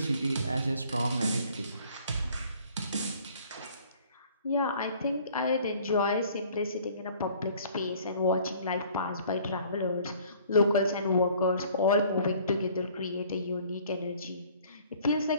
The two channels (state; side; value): inverted; both; correlation -0.55